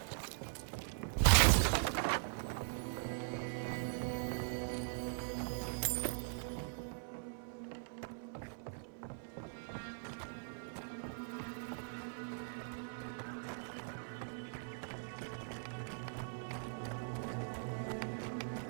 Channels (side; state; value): left; silent; 50 dB below the other